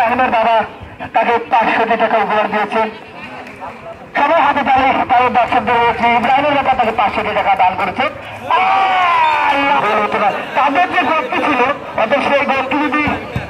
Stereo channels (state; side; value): identical; both; correlation 1.00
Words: বাবা তাকে 500 টাকা উপহার দিয়েছেন। সবাই হাতে তালে তাদের দর্শকদের রয়েছে, ইব্রাহিমের বাবা তাকে 500 টাকা দান করেছে। তাদের যে গোলটি ছিল অর্থাৎ সেই গোলটি যদি